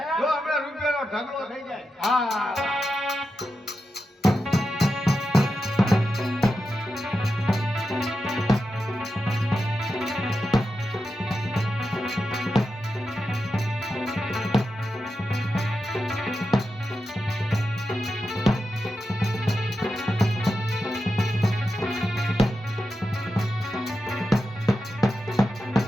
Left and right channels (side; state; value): both; normal; correlation 0.89